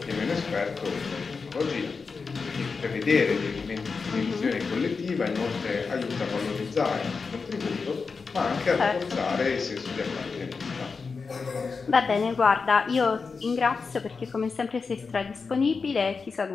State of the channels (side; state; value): right; quieter; 4.8 dB